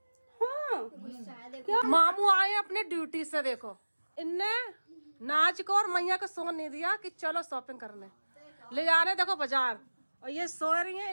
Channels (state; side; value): inverted; both; correlation -1.00